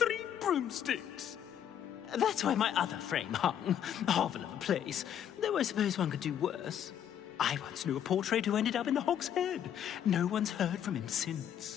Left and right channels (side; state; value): right; quieter; 9.6 dB